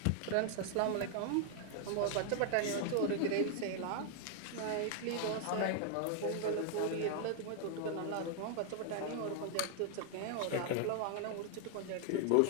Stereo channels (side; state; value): both; different; correlation 0.00